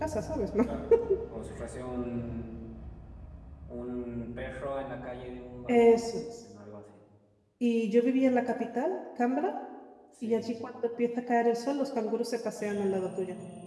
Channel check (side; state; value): both; identical; correlation 1.00